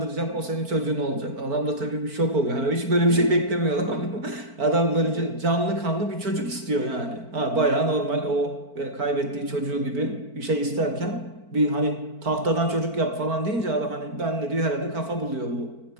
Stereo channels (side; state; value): left; late; 4.5 ms